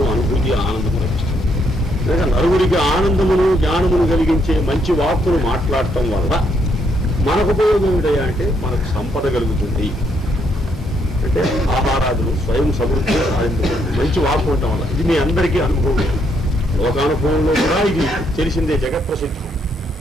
అనుభూతి, ఆనందము లభిస్తుంది. లేక నలుగురికి ఆనందమును జ్ఞానమును కలిగించే మంచి వాక్కును మాట్లాడటం వల్ల మనకు ఉపయోగం ఏమిటయ్యా అంటే మనకు సంపద కలుగుతుంది. అంటే ఆహారాదులు స్వయం సమృద్ధి సాధించబడుతుంది మంచి వాక్కు ఉండటం వల్ల. ఇది మీ అందరికీ అనుభవం, లోకానుభవంలో కూడా ఇది తెలిసిందే, జగత్ప్రసిద్ధం.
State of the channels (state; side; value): normal; both; correlation 0.74